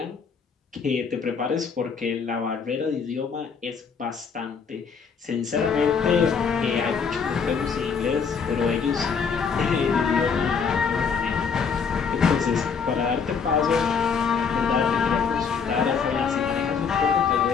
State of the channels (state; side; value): quieter; right; 6.0 dB